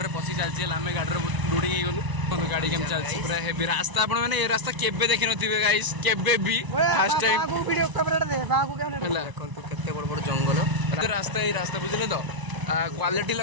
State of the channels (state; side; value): late; left; 1.0 ms